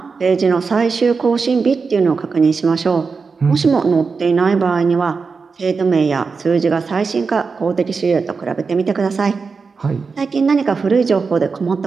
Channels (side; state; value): left; quieter; 4.9 dB